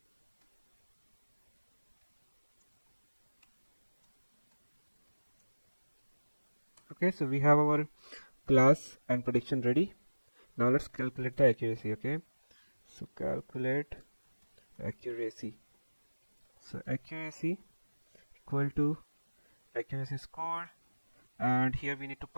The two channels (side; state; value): both; inverted; correlation -1.00